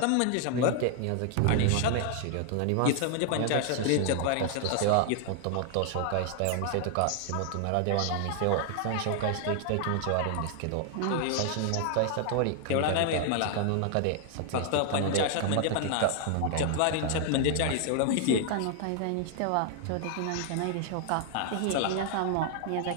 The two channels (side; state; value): both; different; correlation 0.00